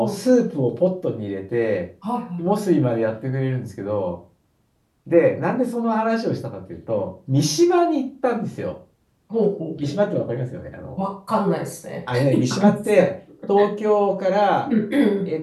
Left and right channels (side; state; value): both; identical; correlation 1.00